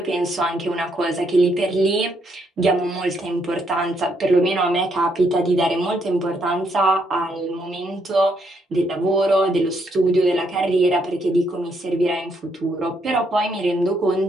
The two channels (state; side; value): normal; both; correlation 0.74